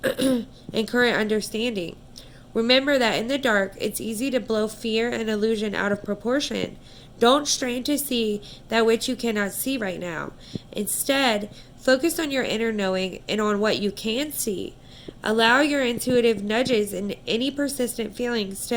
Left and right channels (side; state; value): both; identical; correlation 1.00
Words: and current understanding. Remember that in the dark, it's easy to blow fear and illusion out of proportion. Don't strain to see that which you cannot see right now. Instead, focus on your inner knowing and on what you can see. Allow your intuitive nudges and any persistent feelings